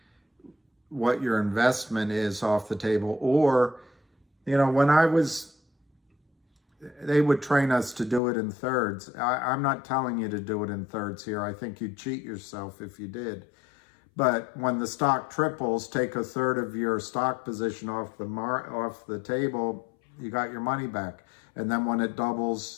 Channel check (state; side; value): drops out; right; at 8.2 s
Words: what your investment is off the table, or, they would train us to do it in thirds. I'm not telling you to do it in thirds here. I think you'd cheat yourself if you did. But when the stock triples, take a third of your stock position off the table, you got your money back. And then when it